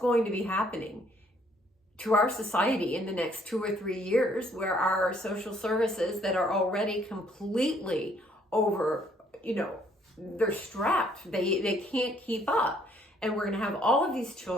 to be happening to our society in the next 2 or 3 years, where our social services that are already completely over, they're strapped. They can't keep up. And we're going to have all of these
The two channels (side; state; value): both; normal; correlation 0.65